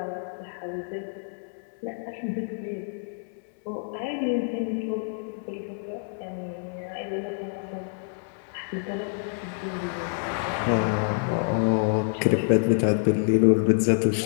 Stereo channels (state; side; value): silent; right; 60 dB below the other